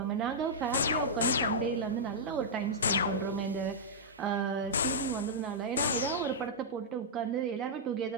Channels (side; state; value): both; normal; correlation -0.09